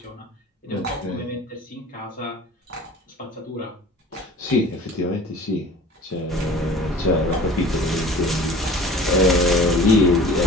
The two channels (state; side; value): normal; both; correlation 0.43